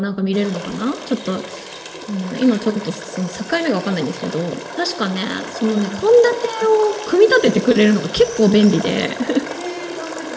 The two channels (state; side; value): identical; both; correlation 1.00